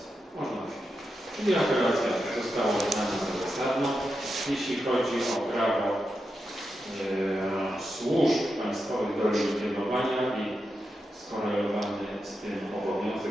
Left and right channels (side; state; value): both; normal; correlation 0.88